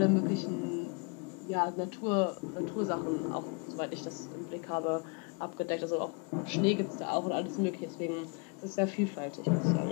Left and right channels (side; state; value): right; quieter; 32.5 dB